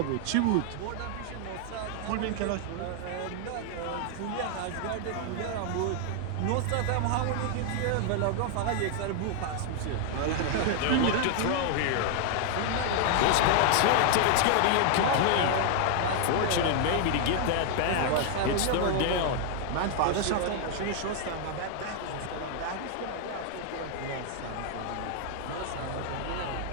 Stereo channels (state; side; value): different; both; correlation 0.00